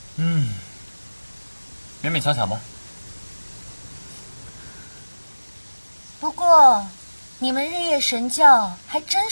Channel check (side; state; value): both; inverted; correlation -1.00